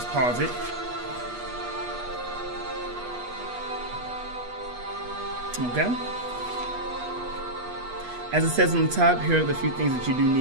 pause it. Okay. As it says on the top, here are the few things that you do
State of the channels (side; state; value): left; late; 8.3 ms